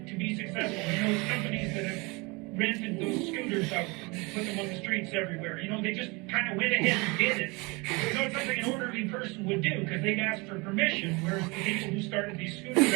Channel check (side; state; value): left; quieter; 26.7 dB